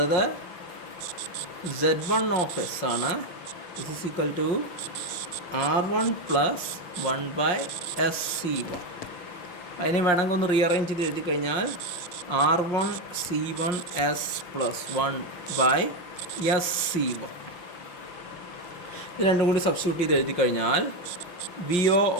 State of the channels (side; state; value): right; late; 5.6 ms